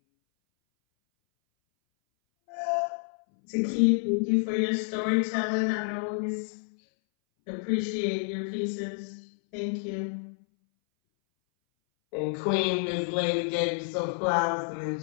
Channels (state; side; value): silent; right; 59 dB below the other